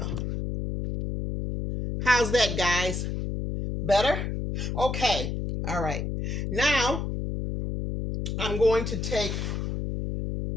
How's that, guys? Better? Okay. All right. Now, I'm going to take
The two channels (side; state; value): left; noise; hum, 3 dB below the sound